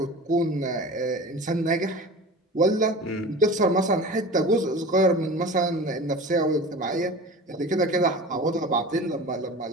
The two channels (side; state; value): both; normal; correlation 0.36